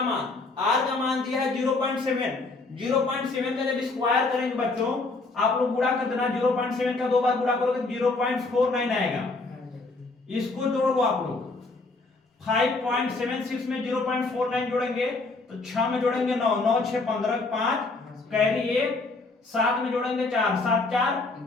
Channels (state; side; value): quieter; right; 3.5 dB